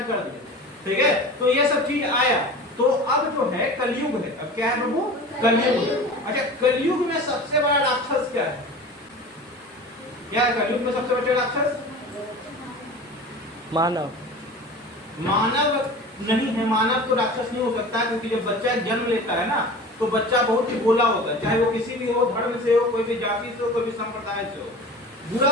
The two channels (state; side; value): normal; both; correlation 0.36